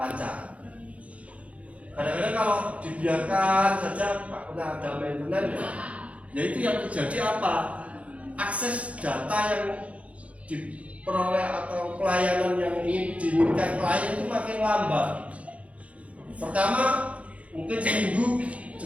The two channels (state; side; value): late; left; 0.065 ms